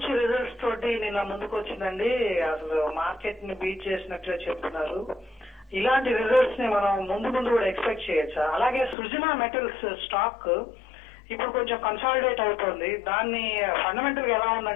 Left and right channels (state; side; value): drops out; right; at 9.0 s